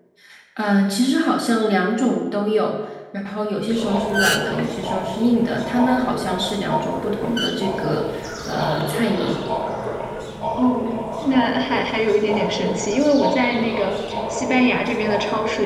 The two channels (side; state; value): both; identical; correlation 1.00